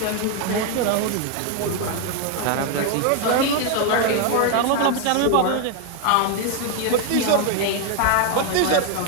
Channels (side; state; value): both; different; correlation 0.01